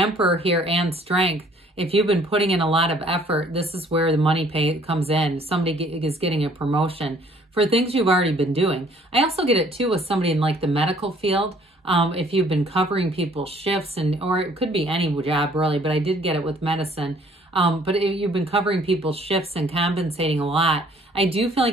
here and Strength, if you've been putting in a lot of effort, this is where the money pay comes in. Somebody is getting a promotion for things you've already been doing. I also get it too with somebody in like the medical field. If you've been covering people's shifts, or it could be any job really, but I did get it with medicine. But if you've been covering people's shifts and compensating a lot, I do feel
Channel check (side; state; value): both; normal; correlation 0.59